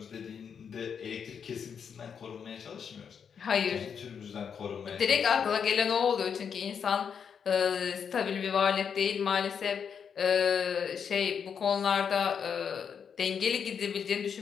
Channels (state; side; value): quieter; right; 7.1 dB